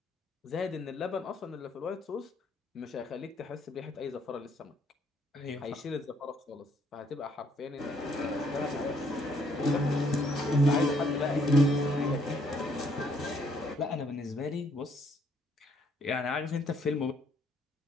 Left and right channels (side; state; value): both; normal; correlation 0.68